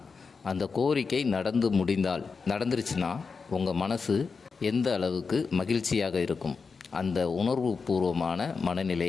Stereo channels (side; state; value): right; quieter; 5.0 dB